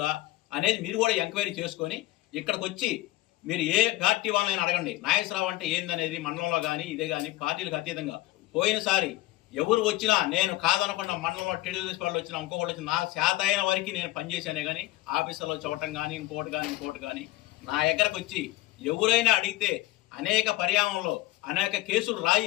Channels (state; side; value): quieter; right; 17.6 dB